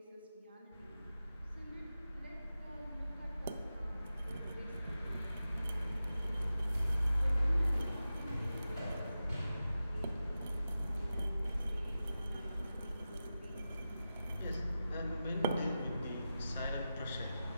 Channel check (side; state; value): both; inverted; correlation -0.93